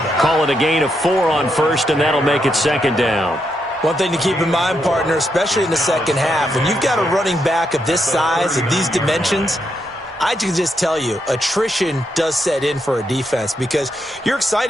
Call it a gain of 4 on first, and that'll make it second down. One thing to keep in mind, partner, especially in the second half, when you've got a running back of this size, of these dimensions, I can just tell you, attrition does set in for a defense because you're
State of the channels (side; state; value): both; normal; correlation 0.81